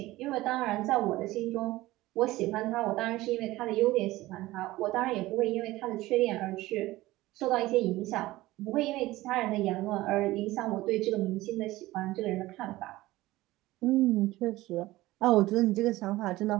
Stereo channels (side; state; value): left; quieter; 17.9 dB